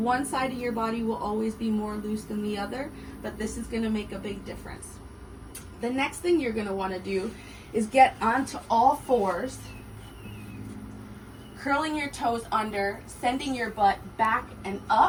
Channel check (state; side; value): identical; both; correlation 1.00